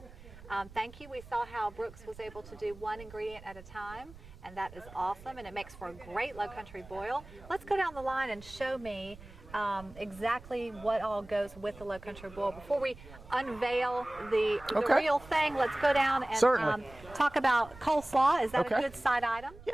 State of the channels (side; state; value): right; noise; rumble, 19 dB below the sound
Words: Thank you. We saw how Brooks was able to do one ingredient at a time, and that is awesome, and it makes for a great low country boil. Let's go down the line and show me exactly what all goes with the low country boil. Before we unveil the real thing, let's go down and talk about coleslaw. Is that a good side item?